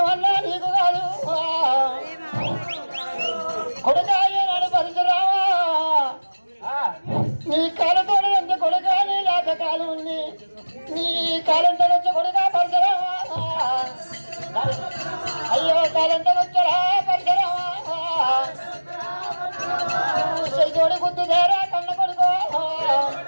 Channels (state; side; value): inverted; both; correlation -1.00